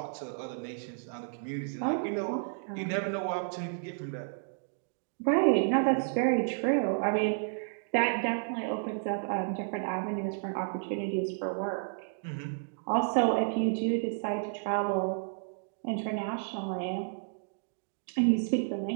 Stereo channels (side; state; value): left; silent; digital silence